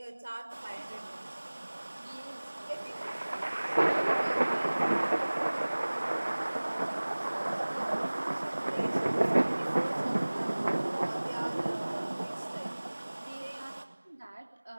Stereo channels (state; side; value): inverted; both; correlation -1.00